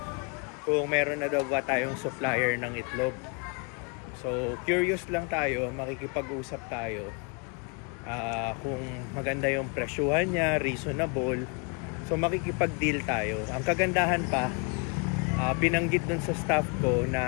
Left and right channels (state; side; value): quieter; right; 34.5 dB